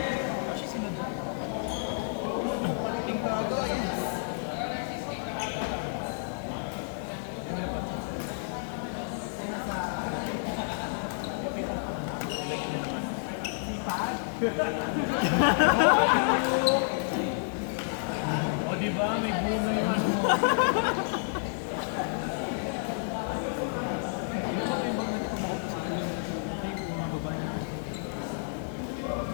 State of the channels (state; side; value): silent; right; digital silence